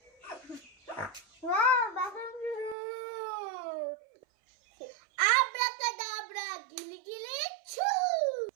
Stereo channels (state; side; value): drops out; left; at 2.8 s